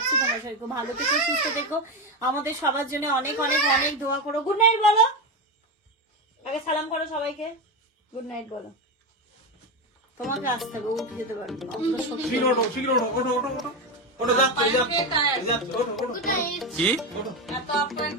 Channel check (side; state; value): both; normal; correlation 0.14